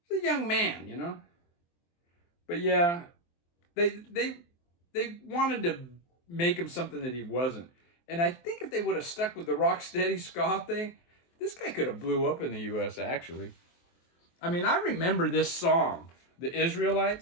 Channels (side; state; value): right; late; 23 ms